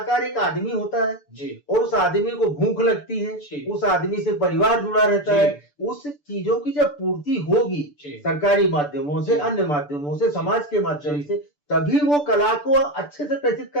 एक आदमी होता है जी। और उस आदमी को भूख लगती है, उस आदमी से परिवार जुड़ा रहता है, उस चीजों की जब पूर्ति होगी सरकारी माध्यमों से, अन्य माध्यमों से, समाज के माध्यम से, तभी वो कला को अच्छे से प्रेषित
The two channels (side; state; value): right; late; 6.9 ms